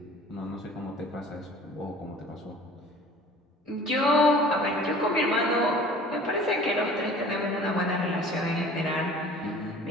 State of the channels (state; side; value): normal; both; correlation 0.46